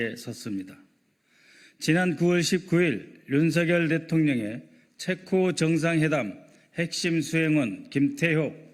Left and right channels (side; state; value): both; identical; correlation 1.00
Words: 섰습니다. 지난 9월 19일 윤석열 대통령의 체코 정상회담 핵심 수행원 김태효